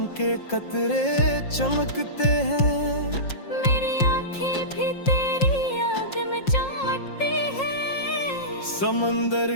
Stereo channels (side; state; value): right; late; 5.6 ms